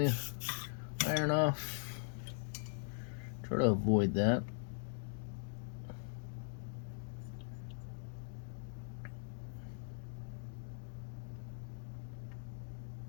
iron off. Try to avoid that.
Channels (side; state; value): right; silent; digital silence